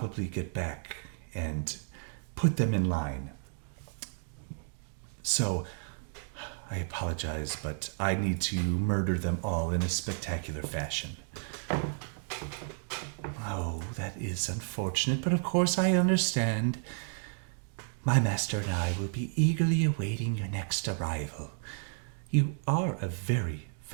get back and put them in line. So I apologize, but I need to murder them all in a spectacular fashion. Oh, that is unfortunate, but of course I understand. My master and I will be eagerly awaiting your next arrival. You are a very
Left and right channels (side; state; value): left; silent; 56 dB below the other